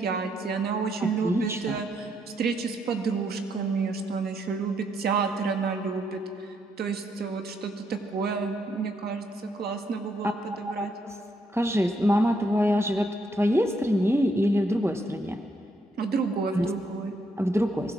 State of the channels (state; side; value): normal; both; correlation 0.75